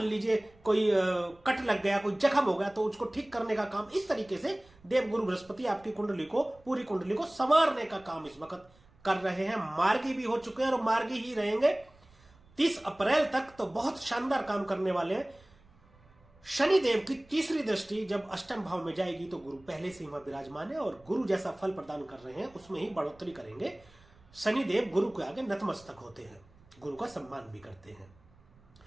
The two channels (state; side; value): noise; right; rumble, 28 dB below the sound